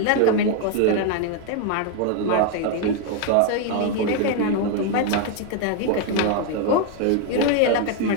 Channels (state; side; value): different; both; correlation 0.01